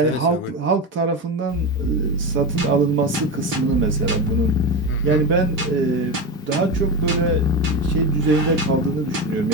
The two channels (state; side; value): normal; both; correlation 0.19